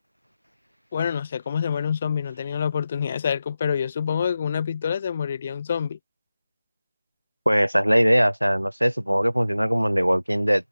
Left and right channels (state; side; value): inverted; both; correlation -0.94